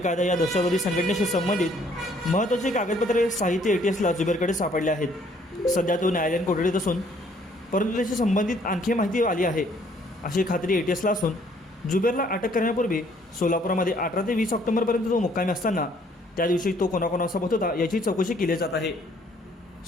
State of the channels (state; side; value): normal; both; correlation 0.63